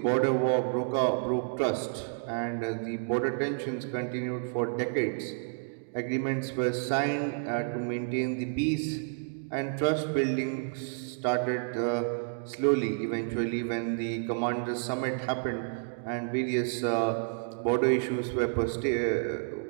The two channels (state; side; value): silent; left; digital silence